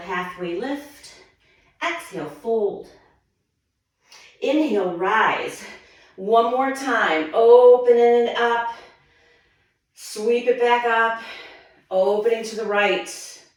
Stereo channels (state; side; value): identical; both; correlation 1.00